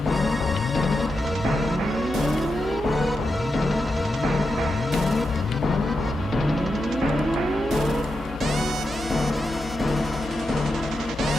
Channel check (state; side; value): normal; both; correlation 0.88